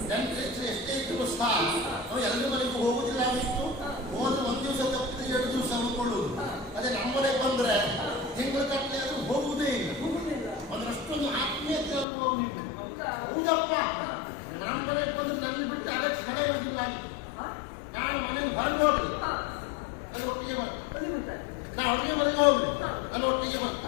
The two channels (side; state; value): right; drops out; at 12.1 s